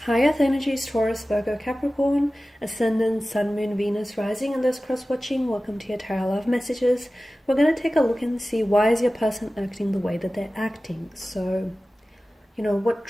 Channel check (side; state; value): both; normal; correlation 0.96